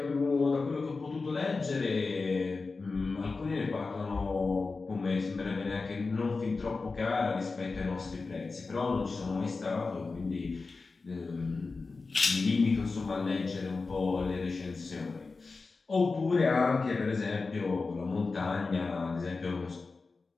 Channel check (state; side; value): quieter; right; 4.0 dB